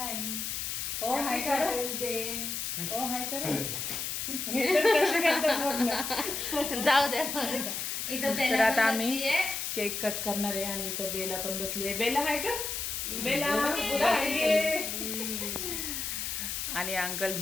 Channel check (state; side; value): noise; left; hiss, 3 dB below the sound